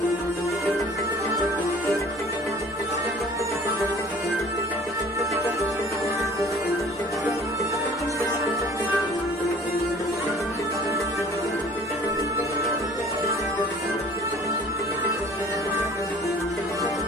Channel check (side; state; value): both; normal; correlation 0.50